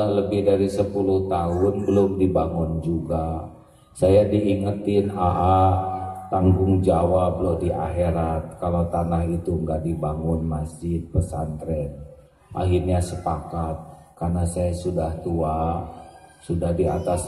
lebih dari 10 tahun belum dibangun juga. Saya diingetin tanggung jawab loh di akhirat kalau tanah itu nggak dibangun masjid pesantren. Akhirnya sepakat, karena saya sudah tua, sudah di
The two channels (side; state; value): both; identical; correlation 1.00